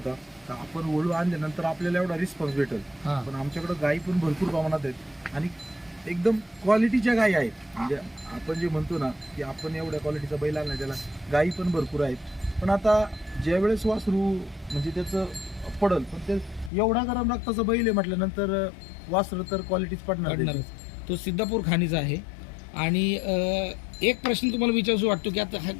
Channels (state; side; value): drops out; right; at 16.7 s